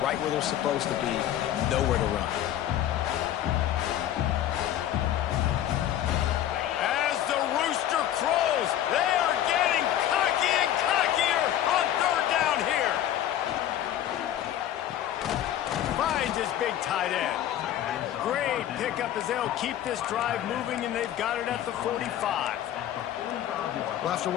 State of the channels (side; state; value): right; quieter; 11.7 dB